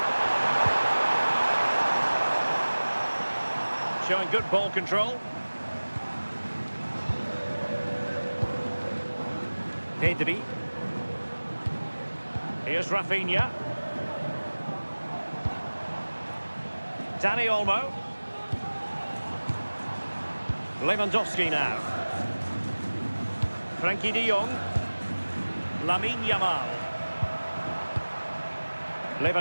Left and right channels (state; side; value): inverted; both; correlation -1.00